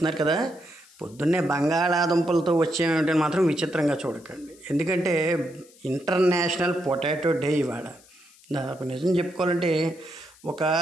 కదా, పొద్దున్నే బంగాళాదుంపలతో వచ్చేమంటే మాత్రం విచిత్రంగా చూడకండి. ఎందుకంటే ఇంటర్నేషనల్ పొటాటో డే ఇవాళ. దాదాపు నిజం చెప్పుకోవాలంటే ఒక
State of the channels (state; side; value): noise; left; hiss, 26 dB below the sound